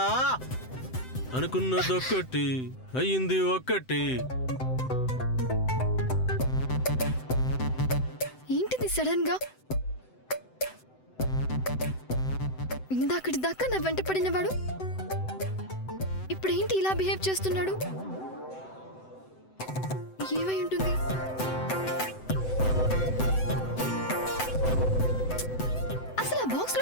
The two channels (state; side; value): late; right; 7.8 ms